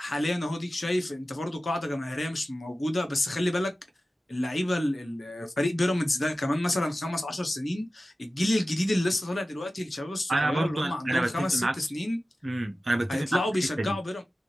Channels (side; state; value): both; normal; correlation 0.95